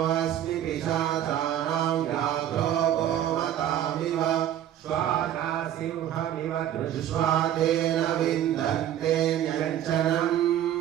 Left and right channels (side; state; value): left; quieter; 11.2 dB